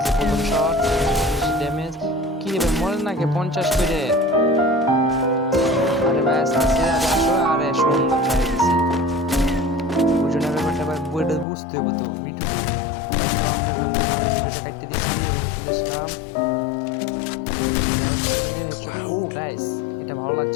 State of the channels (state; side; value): drops out; right; at 11.5 s